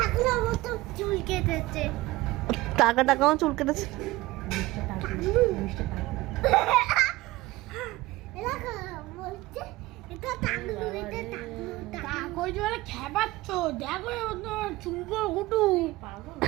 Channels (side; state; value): left; quieter; 19.2 dB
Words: মতো চুল কেটেছে। টাকাও চুল কেটেছে।